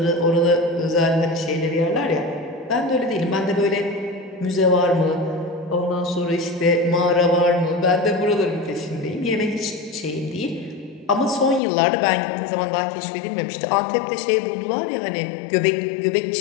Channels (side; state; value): right; drops out; at 11.6 s